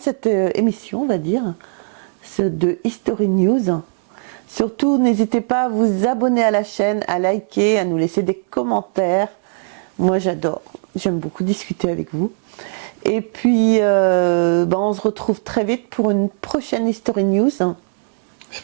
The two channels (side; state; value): left; silent; digital silence